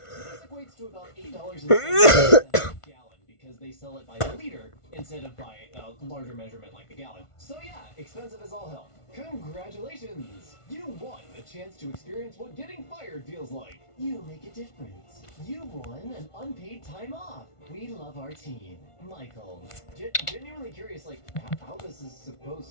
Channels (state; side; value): late; right; 1.5 ms